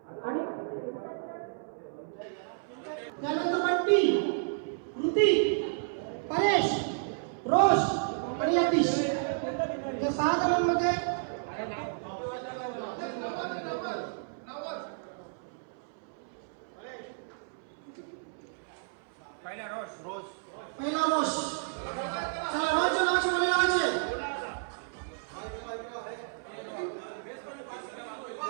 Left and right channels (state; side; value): silent; left; 57 dB below the other